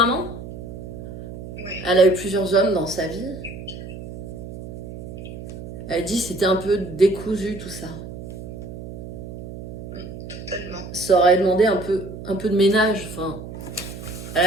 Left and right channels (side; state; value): right; noise; hum, 11 dB below the sound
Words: Oui. Elle a eu plusieurs hommes dans sa vie. Elle dit que c'était un peu décousu tout ça. Totalement. Ça aurait demandé un peu de ménage. Enfin, elle